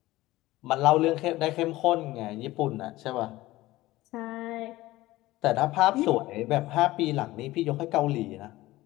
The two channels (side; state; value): right; quieter; 17.7 dB